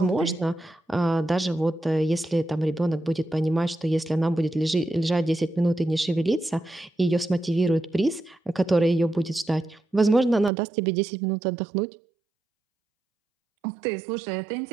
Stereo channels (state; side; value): drops out; left; at 10.5 s